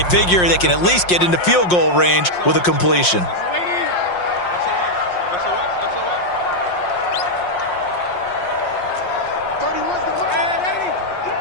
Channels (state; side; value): late; right; 5.6 ms